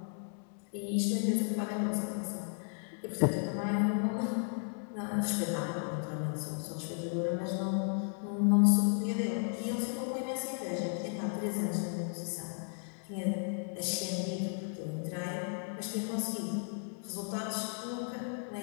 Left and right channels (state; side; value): silent; right; 55 dB below the other